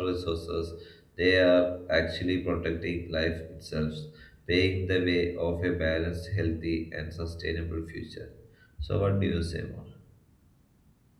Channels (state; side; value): identical; both; correlation 1.00